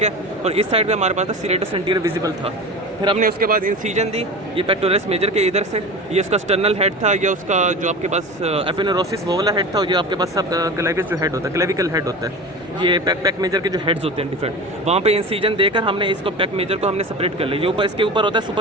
है। और इस साइड पे हमारे पास था सीरेटस एंटीरियर विजिबल था। फिर हमने उसके बाद इंसीजन दी, ये पेक्टोरलिस मेजर के इधर से, ये उसका स्टर्नल हेड था, ये उसका जो आपके पास एफिनोरोसिस वो वाला हेड था, और ये आपके पास सब क्लेवियस जो हेड होता है, क्लेविकल हेड होता है, ये पैक मेजर के जो हेड्स होते हैं डिफरेंट, वहाँ पे इंसीजन देकर हमने इसको पैक मेजर को हमने सेपरेट कर लिया। ये ऊपर इसके ऊपर होता है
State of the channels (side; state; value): both; normal; correlation 0.31